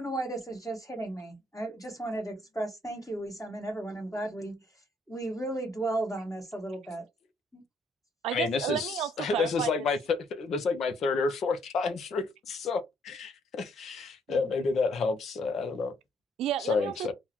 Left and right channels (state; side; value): normal; both; correlation 0.68